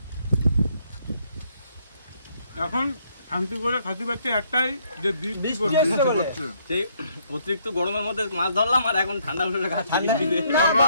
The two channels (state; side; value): inverted; both; correlation -0.69